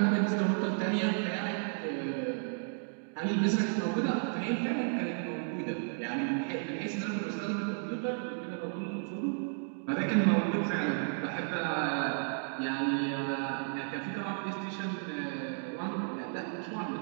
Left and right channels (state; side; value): silent; left; 56 dB below the other